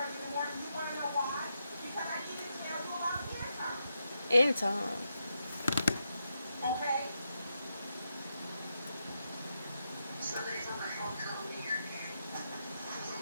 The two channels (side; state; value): both; inverted; correlation -0.84